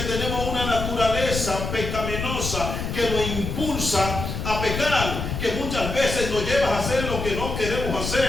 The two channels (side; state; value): left; noise; rumble, 4 dB below the sound